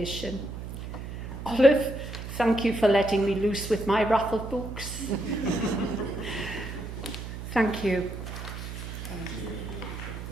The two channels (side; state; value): right; noise; hum, 8 dB below the sound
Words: Olive, thank you for letting me loose with my raffle books. Thank you.